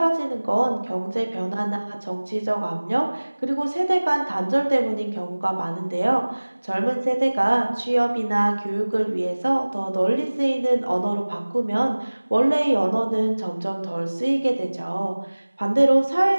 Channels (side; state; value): both; inverted; correlation -1.00